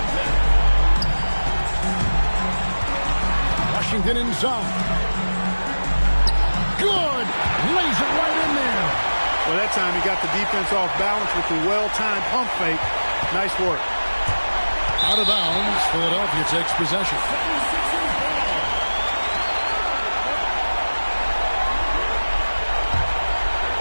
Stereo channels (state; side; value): inverted; both; correlation -1.00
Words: Washington inside. Good! Lays it right in there. Well, that time he got the defense off balance with the well-timed pump fake. Nice work. Out of bounds, Philadelphia takes possession.